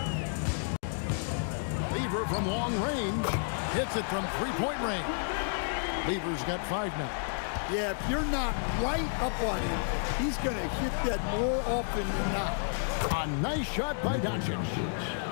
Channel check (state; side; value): silent; right; digital silence